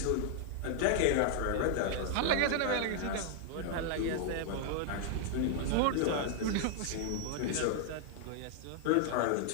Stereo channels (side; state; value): both; different; correlation -0.01